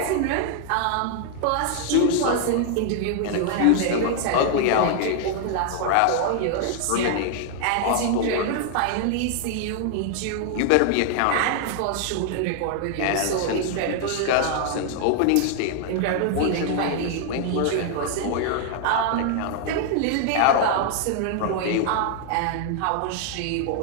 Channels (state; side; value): different; both; correlation 0.00